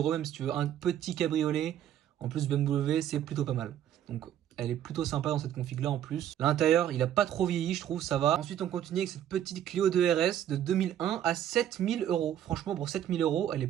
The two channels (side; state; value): left; quieter; 10.8 dB